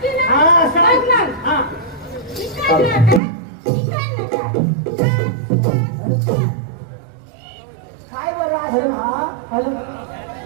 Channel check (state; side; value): drops out; left; at 3.2 s